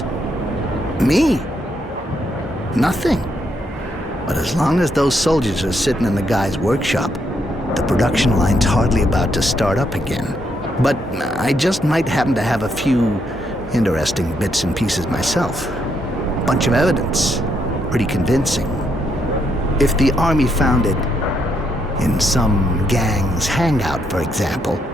Me? Nothing. But as long as those soldiers are sitting in the guy's workshop, the production line's hardly about to start up again. But I just might happen to have a few interesting bits and pieces myself. Bunch of evidence. Pretty convincing. If the Army found it in some gang's hangout, for example,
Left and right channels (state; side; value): normal; both; correlation 0.76